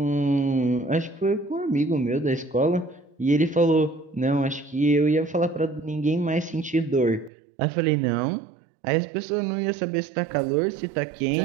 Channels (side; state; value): left; drops out; at 7.3 s